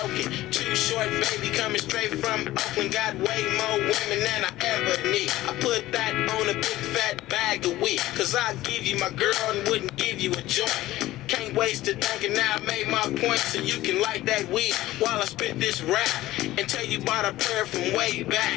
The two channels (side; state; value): right; quieter; 16.2 dB